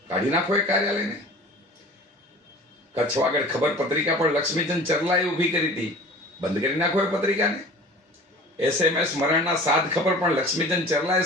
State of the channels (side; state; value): both; normal; correlation 0.42